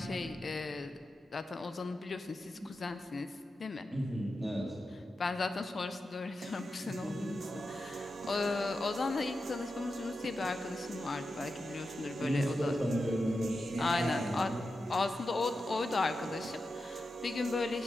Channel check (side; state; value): both; normal; correlation 0.90